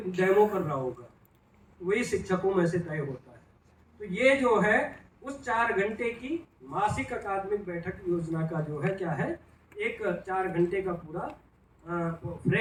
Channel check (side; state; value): both; identical; correlation 1.00